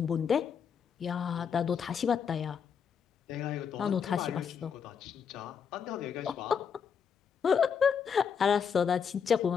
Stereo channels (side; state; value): right; quieter; 6.9 dB